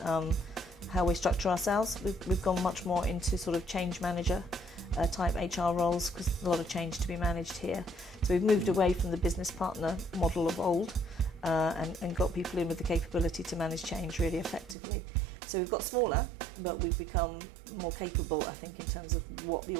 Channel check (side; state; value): left; drops out; at 14.8 s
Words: we structure ourselves. We've gone much more into sort of change manager type HR roles, because there's a lot of change to be managed here. So we've moved away from the business partner model of old and got people in with the capability to manage change really effectively. So we've got smaller, but we've become more capable, I think, in terms of what the